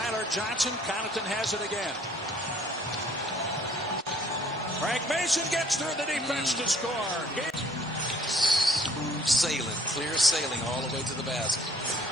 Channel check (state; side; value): normal; both; correlation 0.57